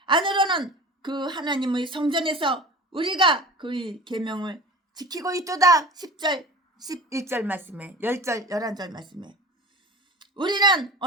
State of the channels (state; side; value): normal; both; correlation 0.36